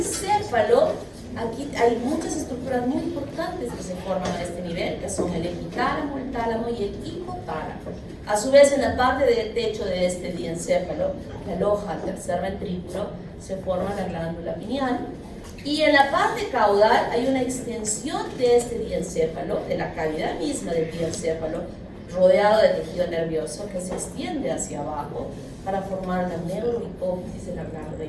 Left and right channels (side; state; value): both; identical; correlation 1.00